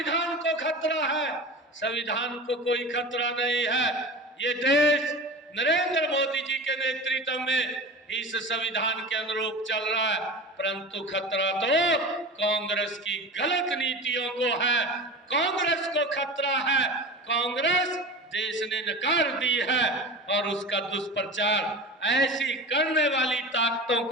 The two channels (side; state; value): both; normal; correlation 0.32